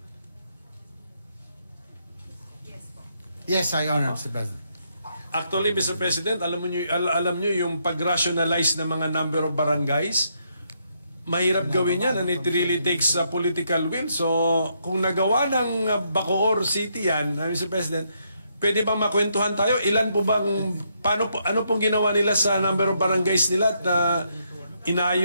Yes, I honor, Mr. President. Actually, Mr. President, alam nyo yung pag-rationalize ng mga number of barangays, mahirap gawin yan and it really takes a political will. So, kung nagawa ng Bacoor City yan, Mr. President, pwede bang makwentuhan tayo? Ilan po bang, ano pong ginawa nila sa number of barangays nila at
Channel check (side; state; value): both; inverted; correlation -0.76